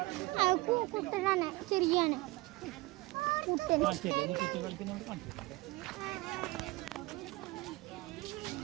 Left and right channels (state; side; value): quieter; left; 21.5 dB